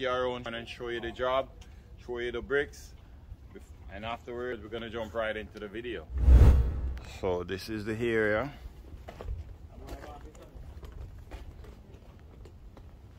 around and show you the job, show you the bricks, and afterwards we're gonna jump right into the video. So this is the area.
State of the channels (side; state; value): both; identical; correlation 1.00